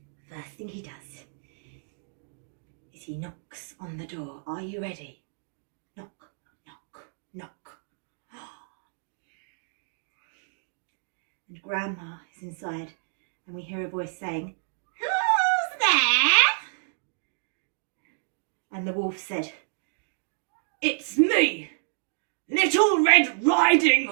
First thing he does is he knocks on the door. Are you ready? Knock, knock, knock. And Grandma is inside, and we hear a voice saying, "Who's there?" And the wolf said, "It's me, Little Red Riding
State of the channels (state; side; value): silent; left; digital silence